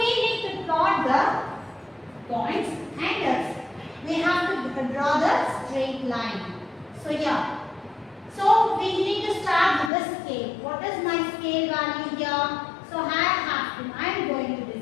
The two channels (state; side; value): drops out; right; at 9.9 s